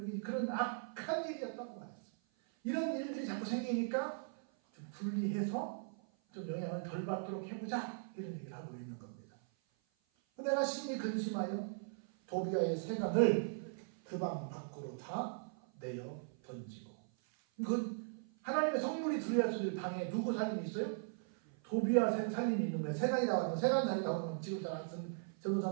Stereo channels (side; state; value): left; silent; 52 dB below the other